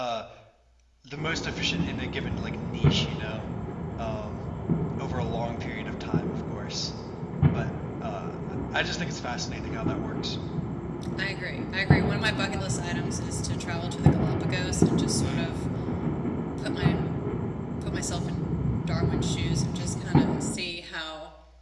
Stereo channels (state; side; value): identical; both; correlation 1.00